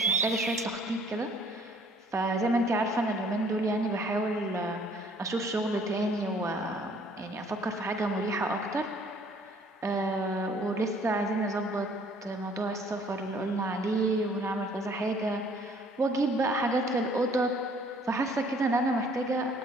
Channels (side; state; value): both; normal; correlation 0.58